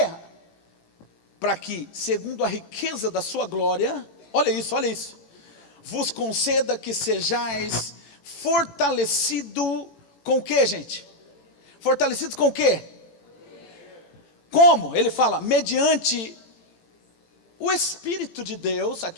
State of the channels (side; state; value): right; late; 18 ms